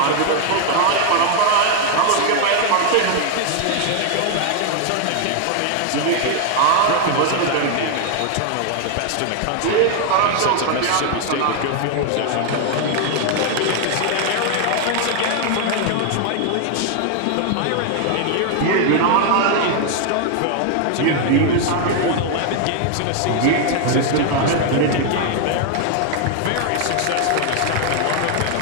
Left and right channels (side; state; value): both; different; correlation 0.00